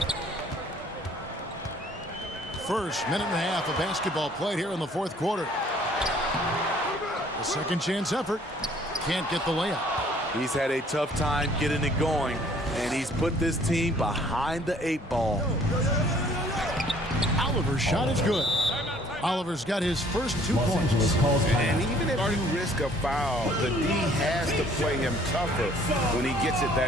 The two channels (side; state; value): both; normal; correlation 0.58